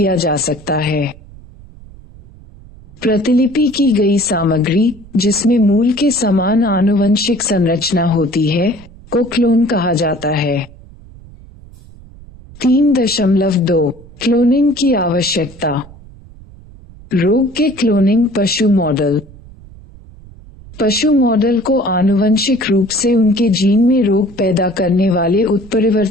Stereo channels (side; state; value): right; noise; rumble, 21 dB below the sound